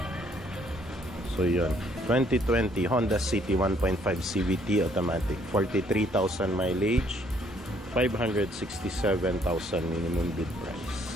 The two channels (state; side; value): normal; both; correlation 0.65